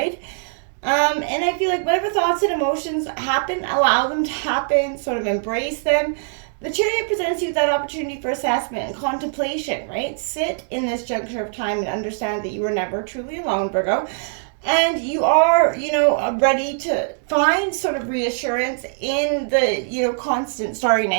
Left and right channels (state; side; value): silent; left; digital silence